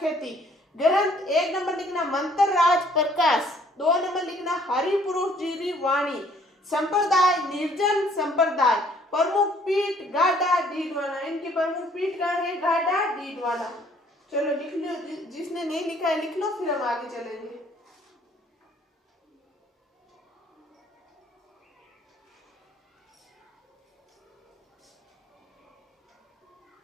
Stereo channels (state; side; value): normal; both; correlation 0.61